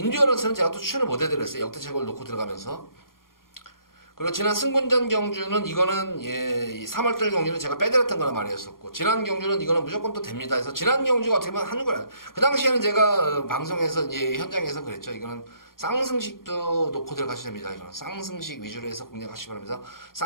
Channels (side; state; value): right; late; 0.91 ms